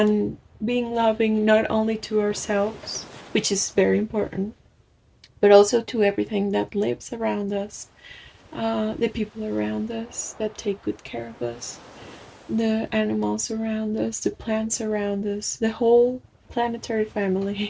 being loving not only to ourselves, which is very important, but also to everything that lives around us, the people around us that take good care of us, the animals around us, the plants around us, the whole planetary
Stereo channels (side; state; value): both; identical; correlation 1.00